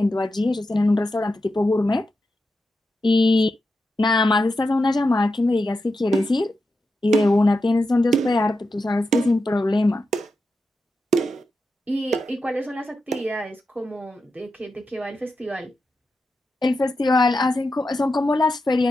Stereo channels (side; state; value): both; normal; correlation 0.89